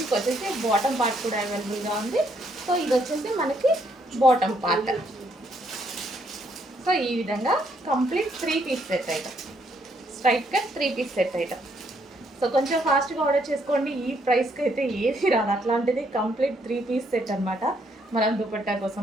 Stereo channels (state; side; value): normal; both; correlation 0.71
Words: వచ్చేసి బాటమ్ పార్ట్ కూడా అవైలబుల్గా ఉంది. సో ఇది వచ్చేసి మనకి బాటమ్ పార్ట్. సో ఈ విధంగా complete 3 piece set item, straight cut 3 piece set item. So కొంచెం ఫాస్ట్గా ఆర్డర్ చేసుకోండి. ఈ ప్రైస్కి అయితే ఏది రాదు. అట్లాంటిది కంప్లీట్ 3 పీస్ సెట్ అనమాట. మనం దుపట్టా